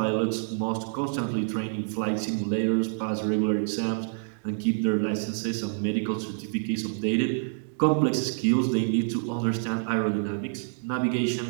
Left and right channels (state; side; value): silent; left; digital silence